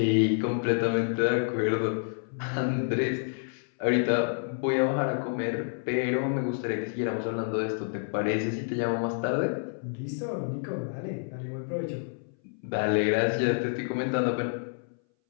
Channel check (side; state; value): right; silent; 59 dB below the other